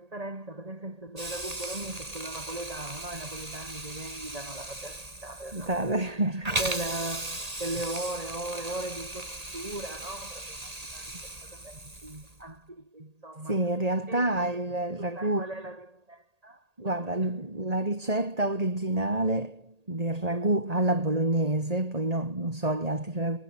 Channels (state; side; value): late; left; 1.8 ms